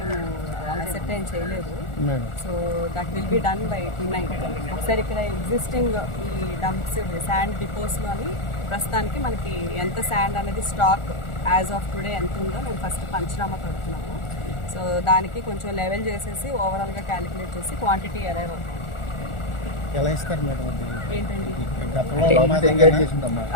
అసెర్టైన్ చేయలేదు. So that will be done by tonight. ఒకసారి ఇక్కడ ఎగ్జిస్టింగ్ ఈ డంప్స్ శాండ్ డిపోస్లో అని ప్రస్తుతానికి మనకి ఎంత శాండ్ అనేది స్టాక్ యాజ్ ఆఫ్ టుడే ఎంత ఉందో మేము ఫస్ట్ పంచనామా కడుతున్నాము. సో దానికి కొంచెం లెవెల్ చేసేసి ఓవరాల్గా క్యాలిక్యులేట్ చేసి క్వాంటిటీ అరైవ్ అవుతాం. ఎలా ఇస్తారు మేడం? ఏంటండి ఏంటండి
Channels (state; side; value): late; right; 1.4 ms